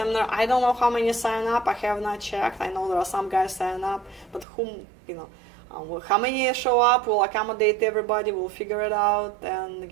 I don't know how many sign up. I have not checked. I know there are some guys sign up, but how many show up? We'll accommodate everybody. We'll figure it out. And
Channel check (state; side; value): drops out; left; at 4.5 s